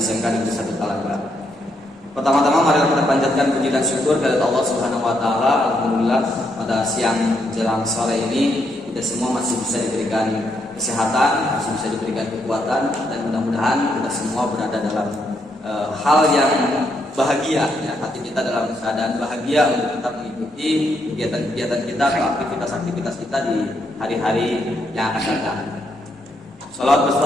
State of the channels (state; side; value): normal; both; correlation 0.77